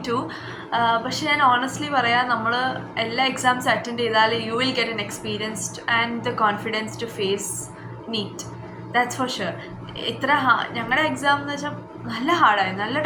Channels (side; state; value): both; identical; correlation 1.00